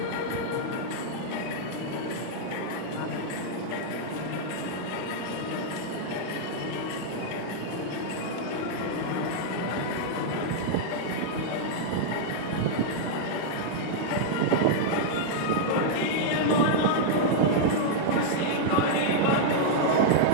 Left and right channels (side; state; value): both; different; correlation -0.02